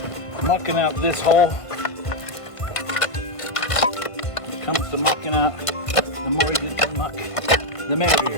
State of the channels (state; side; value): late; right; 1.5 ms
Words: Mucking out this hole. When it comes to mucking out, the more you get to muck, the